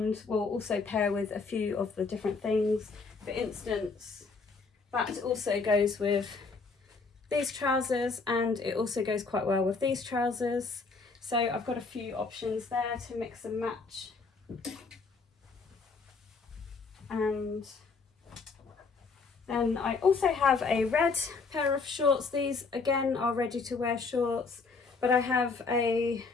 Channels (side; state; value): right; quieter; 4.4 dB